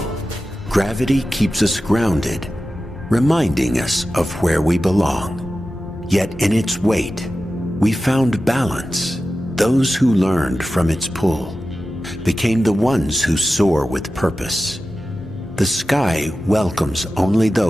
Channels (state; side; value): normal; both; correlation 0.93